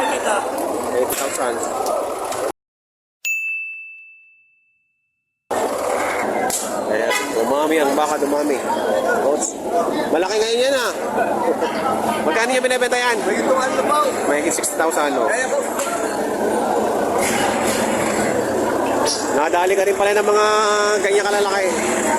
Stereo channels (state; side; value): identical; both; correlation 1.00